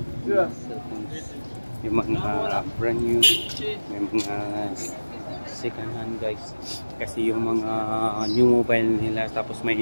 Yung mga brand new, may mga second hand guys. Kasi yung mga new mobile nila, tapos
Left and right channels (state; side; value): inverted; both; correlation -1.00